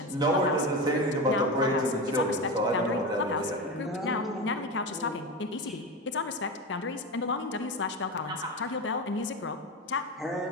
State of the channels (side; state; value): both; normal; correlation 0.22